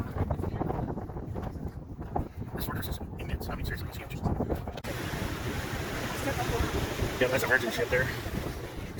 This fortress is immense. I mean, seriously, it's huge. Yeah, that's a merchant ship there.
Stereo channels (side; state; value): both; identical; correlation 1.00